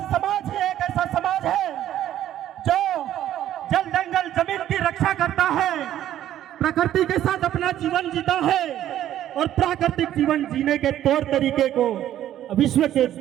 समाज ही एक ऐसा समाज है जो जल जंगल जमीन की रक्षा करता है, प्रकृति के साथ अपना जीवन जीता है, और प्राकृतिक जीवन जीने के तौर तरीके को विश्व के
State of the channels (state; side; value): quieter; left; 12.0 dB